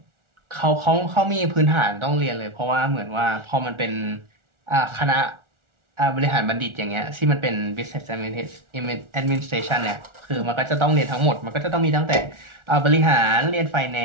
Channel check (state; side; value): late; left; 1.4 ms